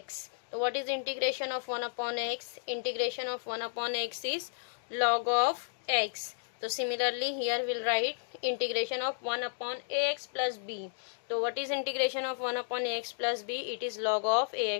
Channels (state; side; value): silent; right; digital silence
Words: So what is integration of 1 upon x? Integration of 1 upon x is log of x. So similarly here we'll write integration of 1 upon ax plus b. So what is integration of 1 upon ax plus b? It is log of